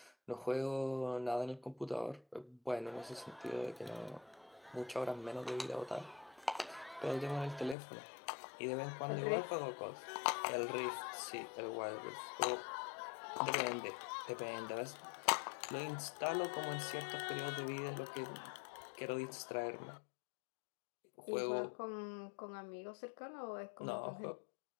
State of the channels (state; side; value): drops out; right; at 7.8 s